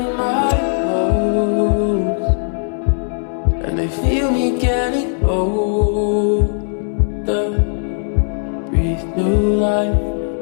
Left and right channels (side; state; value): right; silent; digital silence